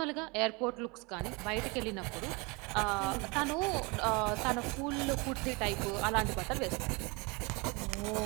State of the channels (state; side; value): quieter; left; 28.2 dB